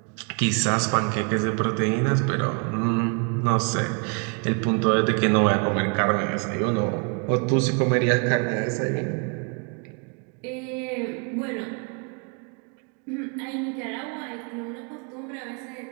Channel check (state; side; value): quieter; left; 37.0 dB